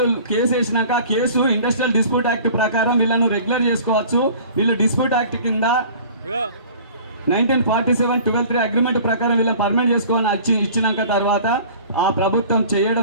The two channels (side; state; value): both; inverted; correlation -0.46